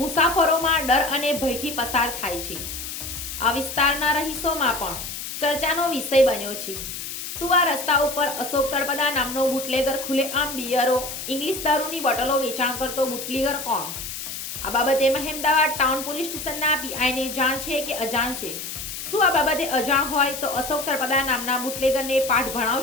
મુસાફરોમાં ડર અને ભયથી પસાર થાય છે. આ વિસ્તારના રહીશોમાં પણ ચર્ચાનો વિષય બન્યો છે. શું આ રસ્તા ઉપર અશોક તળપદા નામનો બુટલેગર ખુલ્લેઆમ બિયરો, ઇંગ્લિશ દારૂની બોટલો વેચાણ કરતો બુટલેગર કોણ? આ બાબતે મહેમદાવાદ ટાઉન પોલીસ સ્ટેશનના પીઆઈને જાણ છે કે અજાણ છે? શું આ બાબતે અજાણ હોય તો અશોક તળપદા નામના બુટલેગરને પાઠ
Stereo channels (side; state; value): left; noise; hiss, 7 dB below the sound